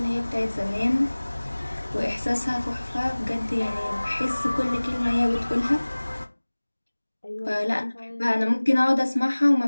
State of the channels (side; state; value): both; inverted; correlation -1.00